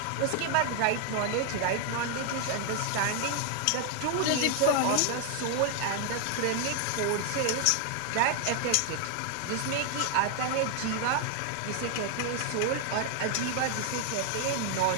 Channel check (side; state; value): both; different; correlation 0.00